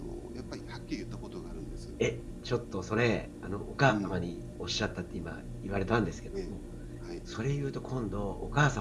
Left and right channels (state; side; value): identical; both; correlation 1.00